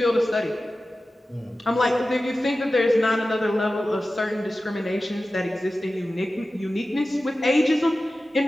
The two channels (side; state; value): both; normal; correlation 0.95